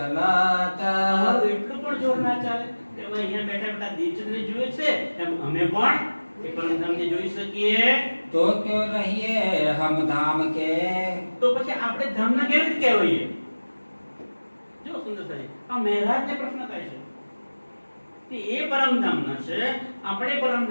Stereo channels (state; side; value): inverted; both; correlation -1.00